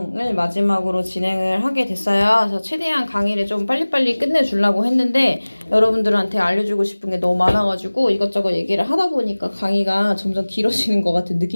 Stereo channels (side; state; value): both; inverted; correlation -1.00